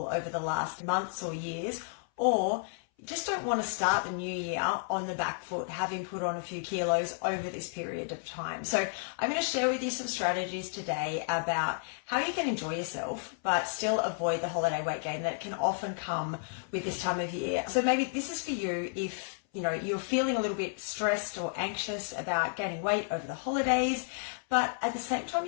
over the last months or years, or you just don't want to start the new year on the back foot, having put on a few kilos over this period of time. So I'm going to share with you some strategies today about how you can enjoy yourself, but still avoid the holiday weight gain that can often come with this time of year. So maybe this is for you if you're feeling a little bit stressed or anxious about gaining weight over the holidays, but at the same time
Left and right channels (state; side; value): silent; right; 57 dB below the other